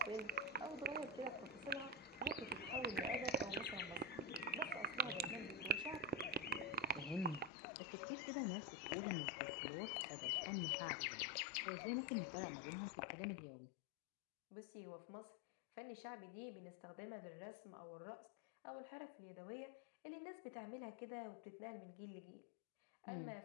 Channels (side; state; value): right; drops out; at 7.5 s